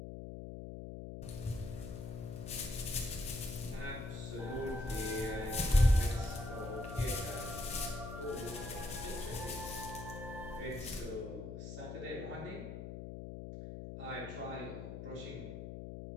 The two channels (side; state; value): left; noise; hum, 7 dB below the sound